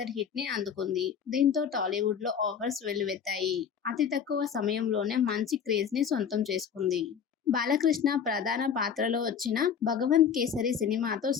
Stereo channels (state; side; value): quieter; right; 7.4 dB